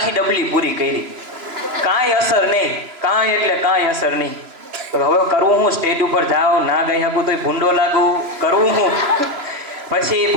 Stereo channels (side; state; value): left; late; 3.0 ms